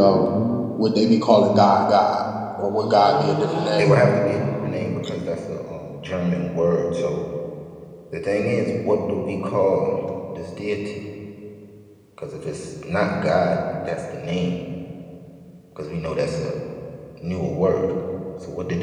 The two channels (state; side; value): identical; both; correlation 1.00